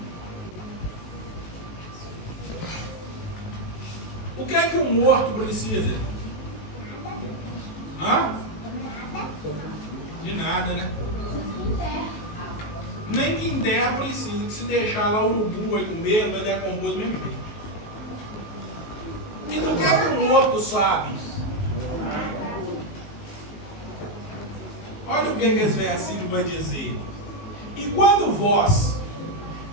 O que é que o morto precisa? Hã? De nada, né? Nem quem der precisa, que se deixar lá o urubu vai comer, vai decompor do mesmo jeito. E do que é que o morto sabe? Olha o que esse versículo vai dizer. E quando vós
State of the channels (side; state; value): right; late; 19 ms